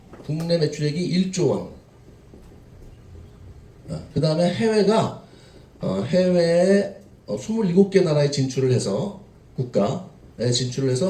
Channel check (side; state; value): both; identical; correlation 1.00